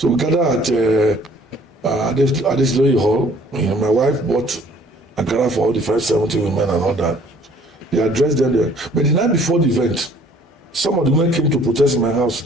we gathered at this Loyi Hall. My wife bought Ankara for all the 570 women and all that. They addressed them there. But the night before the event, some of the women came to protest in my house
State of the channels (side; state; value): both; normal; correlation 0.56